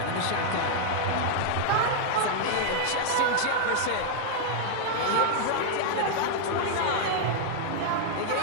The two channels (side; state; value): both; different; correlation -0.01